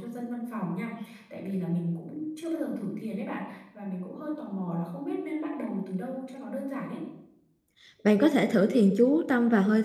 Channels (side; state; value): both; identical; correlation 1.00